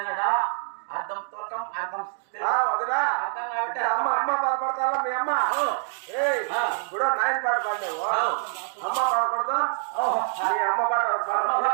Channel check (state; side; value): silent; left; 61 dB below the other